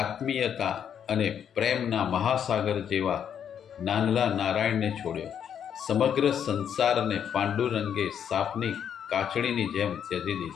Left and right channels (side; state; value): right; quieter; 8.6 dB